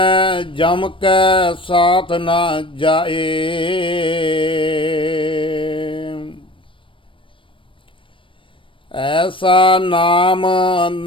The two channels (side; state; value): right; late; 0.25 ms